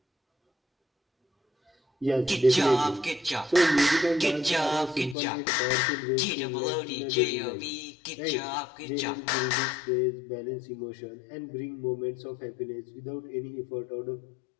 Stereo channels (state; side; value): drops out; right; at 5.2 s